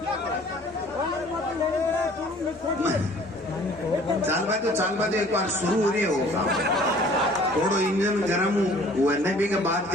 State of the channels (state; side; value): normal; both; correlation 0.53